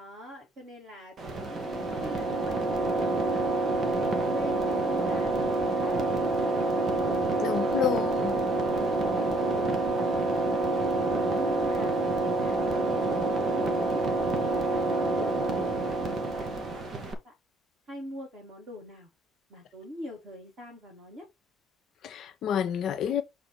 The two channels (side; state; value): both; normal; correlation 0.63